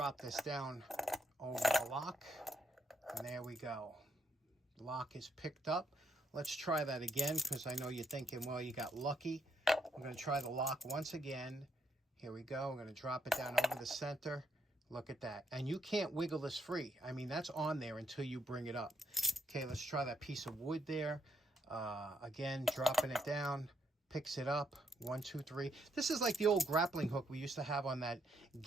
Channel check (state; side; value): normal; both; correlation 0.75